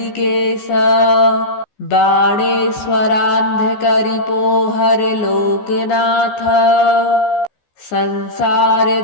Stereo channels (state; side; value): late; right; 14 ms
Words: बाणेश्वरान्धकरिपोहर लोकनाथ, संसार